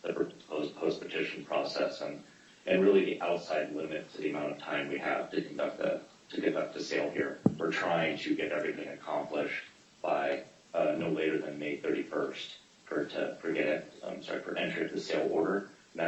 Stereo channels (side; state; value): both; identical; correlation 1.00